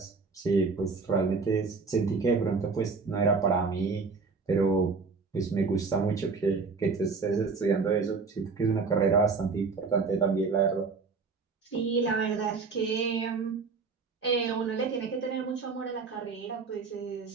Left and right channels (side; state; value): left; quieter; 4.7 dB